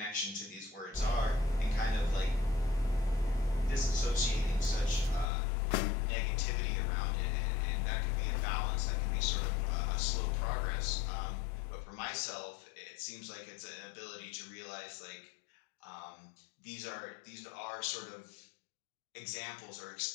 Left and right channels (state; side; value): drops out; right; at 5.2 s